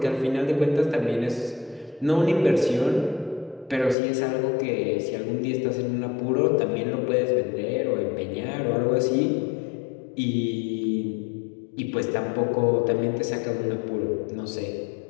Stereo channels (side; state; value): right; drops out; at 4.0 s